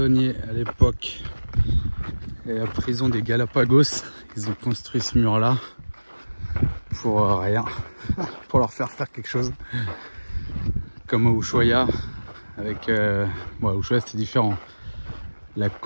à l'époque. Et la prison des Galapagos, ils ont construit ce mur là pour rien, pour leur faire quelque chose. Comme à Ushuaia, avec bon, à Ushuaia c'était différent. La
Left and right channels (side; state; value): both; inverted; correlation -1.00